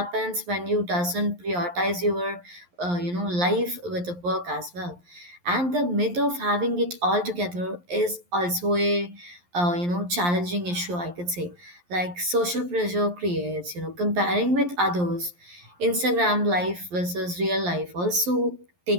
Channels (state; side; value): late; left; 11 ms